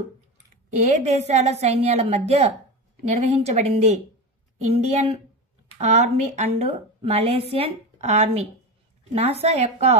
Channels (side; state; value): both; normal; correlation 0.22